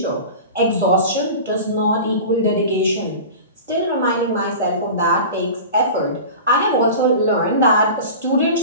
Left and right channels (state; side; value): inverted; both; correlation -0.34